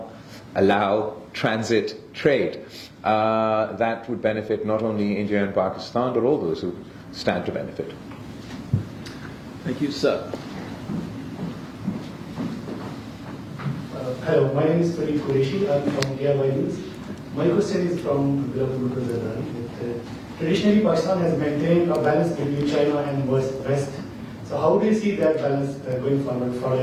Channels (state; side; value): identical; both; correlation 1.00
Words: allow transit trade. That would benefit not only India and Pakistan, but all those who stand to benefit. Thank you, sir. Hello, my name is Farid Qureshi. I'm from IISS. My question is from Bilawal Bhutto Zardari. Traditionally, Pakistan has maintained a balance between China and West. So how do you see that balance going forward